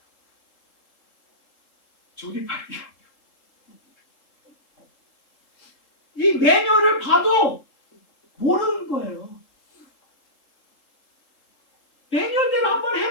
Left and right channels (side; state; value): right; late; 3.8 ms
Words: 조립하기가 이 매뉴얼을 봐도 모르는 거예요. 매뉴얼대로 한번